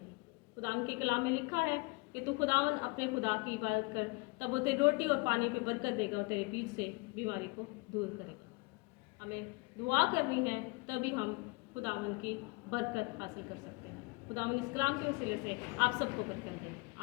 खुदावन के कलाम में लिखा है कि तू खुदावन अपने खुदा की इबादत कर, तब वो तेरी रोटी और पानी पे बरकत देगा और तेरे बीच से बीमारी को दूर करेगा। हमें दुआ करनी है तभी हम खुदावन की बरकत हासिल कर सकते हैं। खुदावन इस कलाम के वसीले से आप सबको बरकत दे।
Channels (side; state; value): right; quieter; 26.6 dB